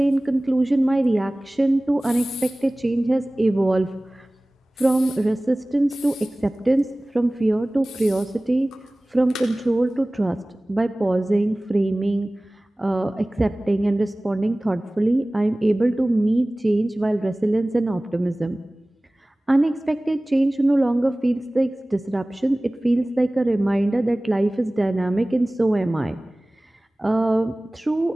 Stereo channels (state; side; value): normal; both; correlation 0.98